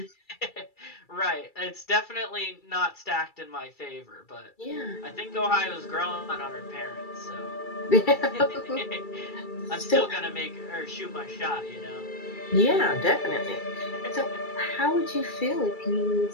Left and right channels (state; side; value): late; right; 2.3 ms